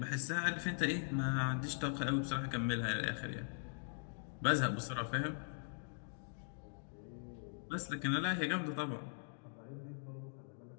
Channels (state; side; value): silent; right; digital silence